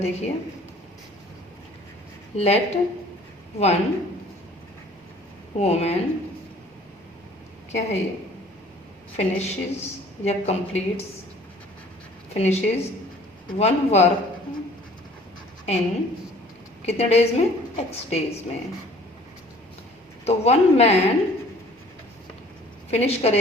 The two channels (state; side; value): normal; both; correlation 0.52